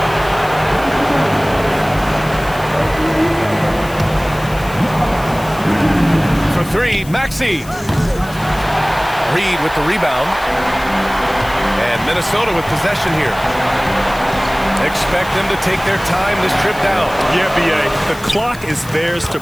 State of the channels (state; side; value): noise; left; hiss, 19 dB below the sound